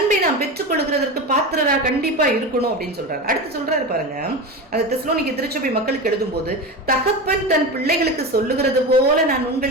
நாம் பெற்றுக் கொள்கிறதற்கு பாத்திரரா கண்டிப்பா இருக்கணும் அப்படின்னு சொல்றாரு. அடுத்து சொல்றாரு பாருங்க, அந்த தெசலோனிக்கே திருச்சபை மக்களுக்கு எழுதும் போது, தகப்பன் தன் பிள்ளைகளுக்கு சொல்லுகிறது போல நான்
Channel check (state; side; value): normal; both; correlation 0.24